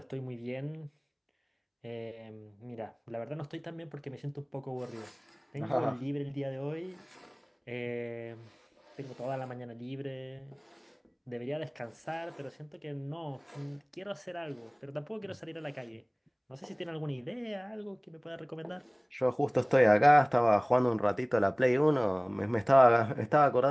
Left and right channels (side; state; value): both; identical; correlation 1.00